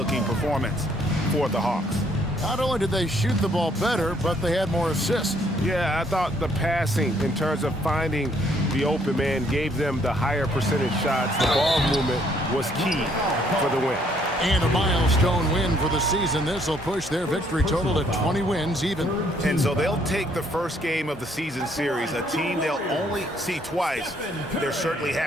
performance for the Hawks. Not only did they shoot the ball better, but they had more assists. Yeah, I thought the passing in terms of finding the open man gave them the higher percentage shots. The ball movement was key for the win. And a milestone win for the season. This will push their victory total to 20 wins even. And so they'll take the first game of the season series, a team they'll only see twice. They're certainly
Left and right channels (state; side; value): normal; both; correlation 0.66